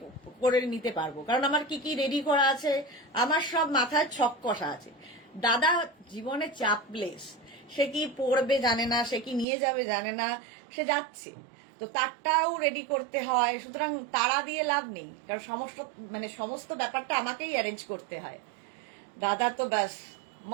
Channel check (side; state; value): left; drops out; at 9.5 s